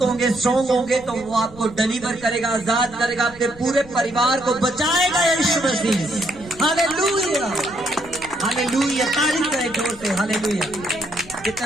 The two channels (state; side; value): noise; left; rumble, 20 dB below the sound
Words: होंगे, स्ट्रांग होंगे, तो वो आपको डिलीवर करेगा, आजाद करेगा, आपके पूरे परिवार को बचाएगा यीशु मसीह। हालेलुया, हालेलुया, तारीफ करें जोर से। हालेलुया।